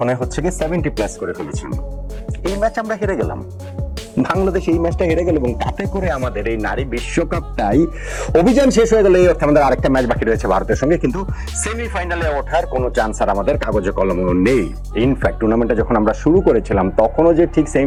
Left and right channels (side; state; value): both; identical; correlation 1.00